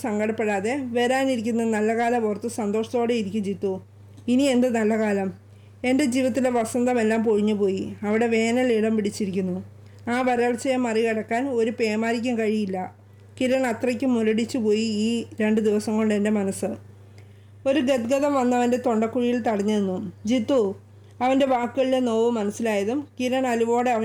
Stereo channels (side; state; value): both; identical; correlation 1.00